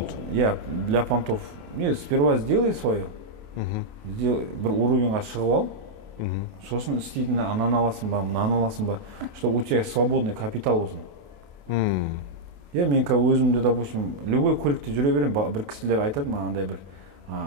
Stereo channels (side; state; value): left; late; 28 ms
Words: Я для понтов. Не, сперва сделай свое. Бір уровеньға шығып ал. Сосын істейтін ананы аласың ба, мынаны аласың ба, чтобы у тебя свободный капитал болсын. Я мен өзімді, допустим, любой көлікте жүре берем, бір кісілер айтады мағандай бір